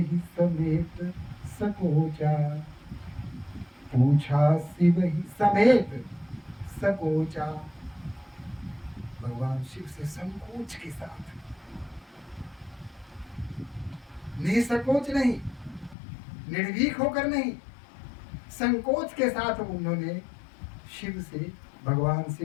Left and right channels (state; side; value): drops out; right; at 16.0 s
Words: समेत सकोचा, पूछा सिवहि समेत सकोचा। भगवान शिव से संकोच के साथ, निसंकोच नहीं, निर्भीक होकर नहीं, संकोच के साथ उन्होंने शिव से, भगवान